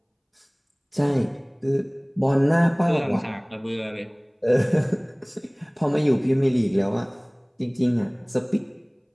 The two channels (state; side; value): identical; both; correlation 1.00